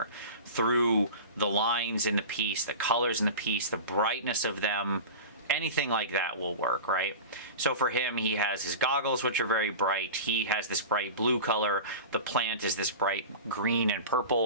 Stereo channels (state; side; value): inverted; both; correlation -0.31